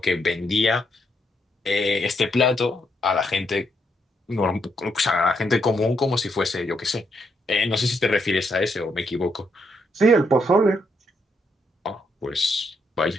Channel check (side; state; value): both; normal; correlation 0.77